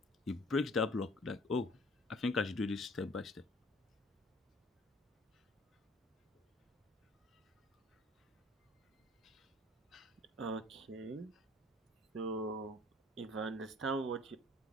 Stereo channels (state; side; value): normal; both; correlation 0.53